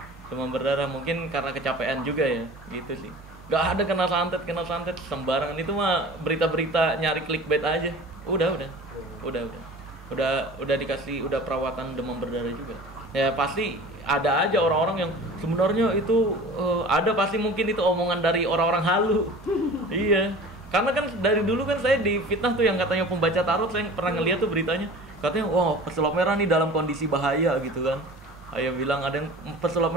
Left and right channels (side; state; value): both; normal; correlation 0.40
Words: Demam berdarah mungkin karena kecapean juga ya, gitu sih. Nggak ada kena santet sembarangan. Itu mah berita-berita nyari clickbait aja. Udah dikasih, udah perawatan demam berdarah juga. Ya pasti ada aja orang-orang yang sebenarnya itu ada, pasti mungkin itu omongan dari orang-orang halu. Iya, karena kan dari dulu kan saya di fitnah tuh yang katanya pembaca tarot, saya pernah ngeliat tuh beritanya, katanya wah pesulap merah nih dalam kondisi bahaya gitu kan. Ayah bilang ada yang pesulap